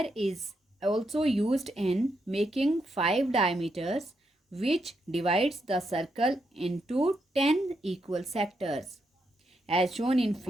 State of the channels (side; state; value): both; normal; correlation 0.81